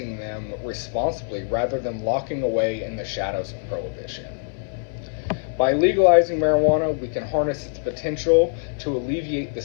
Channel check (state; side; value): silent; right; digital silence